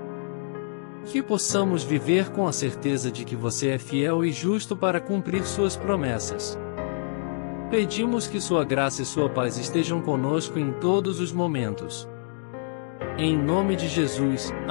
Que possamos viver com a certeza de que Você é fiel e justo para cumprir Suas promessas. Pedimos que Sua graça e Sua paz estejam conosco em todos os momentos. Em nome de Jesus,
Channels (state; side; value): silent; right; digital silence